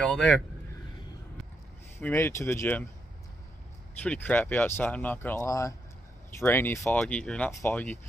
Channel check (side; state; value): both; normal; correlation 0.80